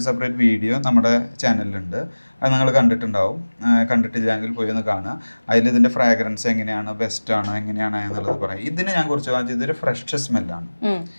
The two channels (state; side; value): inverted; both; correlation -1.00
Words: വീഡിയോ നമ്മുടെ ചാനലിലുണ്ട്. അത് നിങ്ങൾ കണ്ടിട്ടുണ്ടാവും. കണ്ടിട്ടില്ലെങ്കിൽ പോയി ഒന്ന് കാണുക. അതിൽ ഇതിന്റെ ഫ്രാഗ്രൻസ് എങ്ങനെയാണ്, ബെസ്റ്റ് ആണോ എങ്ങനെയാണ് എന്നുള്ളത് പറയാം. ഇതിന് ഞാൻ കുറിച്ച് പറഞ്ഞാൽ ഇതൊരു ഫ്രഷ് സ്മെല്ലാണ്.